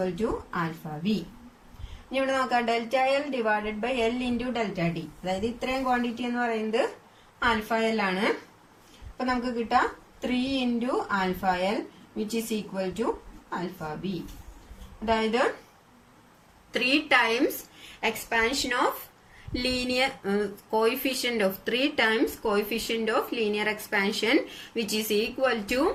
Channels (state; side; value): identical; both; correlation 1.00